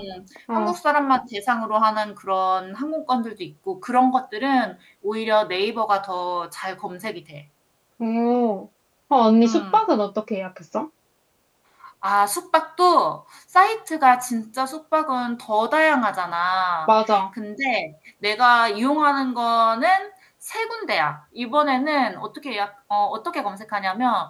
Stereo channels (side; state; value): both; identical; correlation 1.00